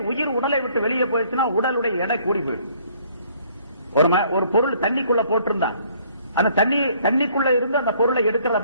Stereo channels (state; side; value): inverted; both; correlation -0.61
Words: உயிர் உடலை விட்டு வெளியே போயிடுச்சுன்னா உடலுடைய எடை கூடி போயிடும். ஒரு பொருள் தண்ணிக்குள்ள போட்டிருந்தா அந்த தண்ணிக்குள்ள இருந்து அந்த பொருளை எடுக்கிறது